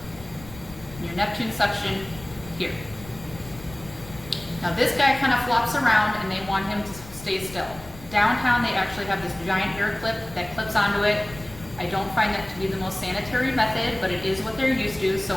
and your Neptune suction here. Now this guy kind of flops around and they want him to stay still. Downtown they actually have this giant air clip that clips onto it. I don't find that to be the most sanitary method, but it is what they're used to, so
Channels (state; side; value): noise; left; rumble, 17 dB below the sound